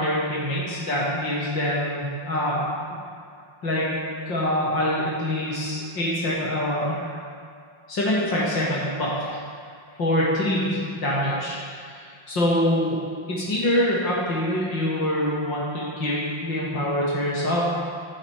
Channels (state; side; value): late; right; 5.6 ms